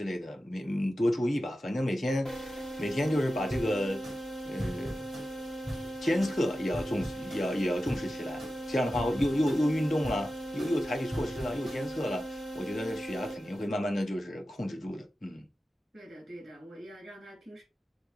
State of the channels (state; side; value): normal; both; correlation 0.93